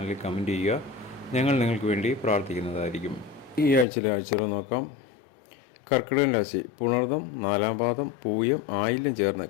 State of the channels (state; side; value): drops out; right; at 3.9 s